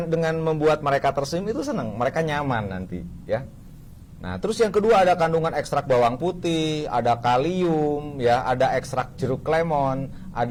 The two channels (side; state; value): both; identical; correlation 1.00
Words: dengan membuat mereka tersenyum itu senang, mereka nyaman nanti ya. Nah, terus yang kedua ada kandungan ekstrak bawang putih, ada kalium ya, ada ekstrak jeruk lemon,